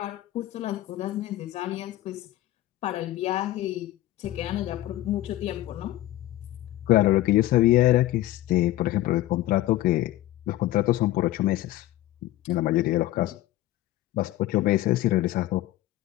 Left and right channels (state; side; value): quieter; right; 15.4 dB